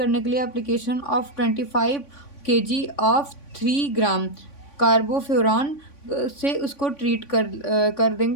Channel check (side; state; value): right; late; 3.5 ms